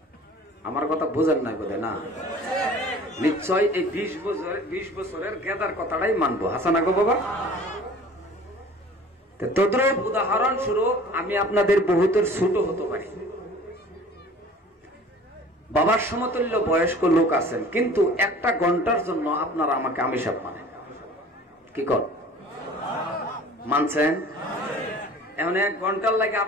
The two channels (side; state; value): both; normal; correlation 0.46